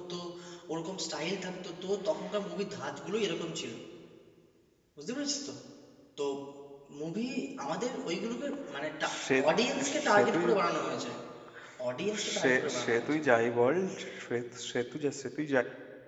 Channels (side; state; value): both; identical; correlation 1.00